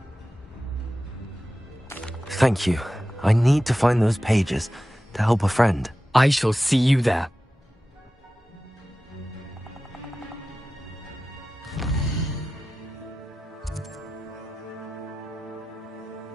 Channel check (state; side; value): normal; both; correlation 0.94